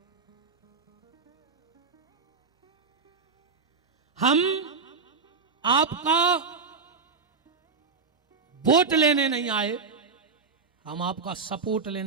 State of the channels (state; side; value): quieter; left; 4.9 dB